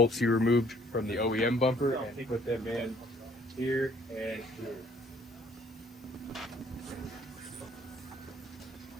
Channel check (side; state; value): both; normal; correlation 0.60